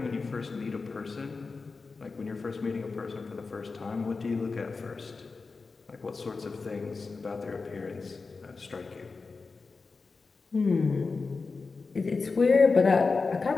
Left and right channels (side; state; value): right; quieter; 4.3 dB